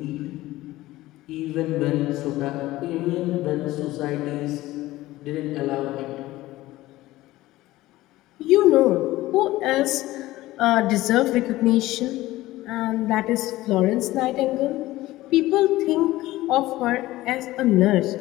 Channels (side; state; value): right; quieter; 17.2 dB